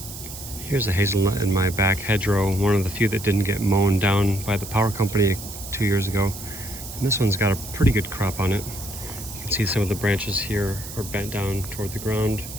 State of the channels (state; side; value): noise; right; hiss, 12 dB below the sound